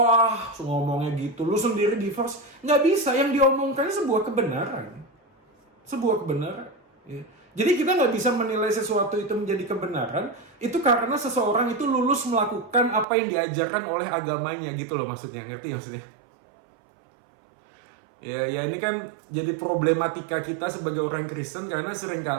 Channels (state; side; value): drops out; left; at 13.1 s